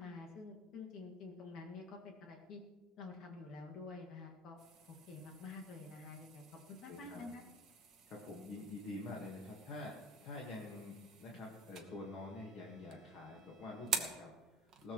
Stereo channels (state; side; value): normal; both; correlation 0.39